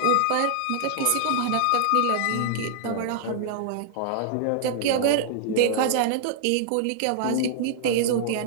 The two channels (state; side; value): different; both; correlation -0.01